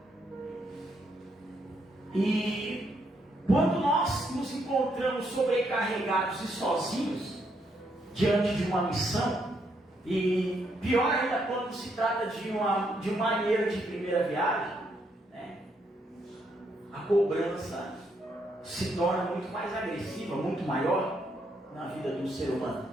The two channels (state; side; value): normal; both; correlation 0.75